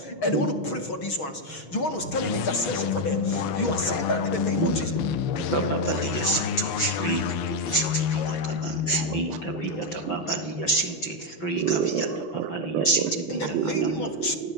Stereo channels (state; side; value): late; right; 5.9 ms